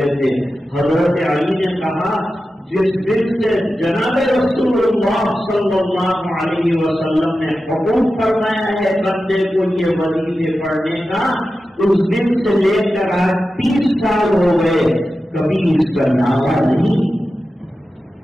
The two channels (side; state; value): both; normal; correlation 0.92